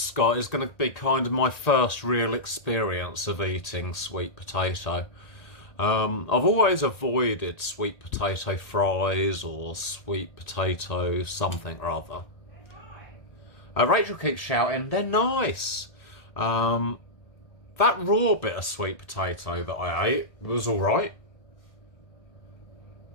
is going to be kind of my first real experience of eating sweet potato. I've always avoided sweet potato fries or sweet potato something or other. Rachel keeps shouting, they're nice. That raw bit of sweet potato that I ate was alright.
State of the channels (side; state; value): right; late; 1.6 ms